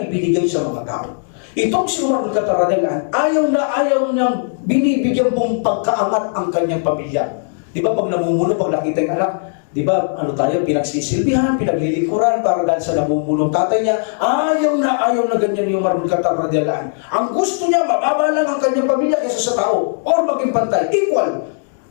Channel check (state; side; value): silent; right; 68 dB below the other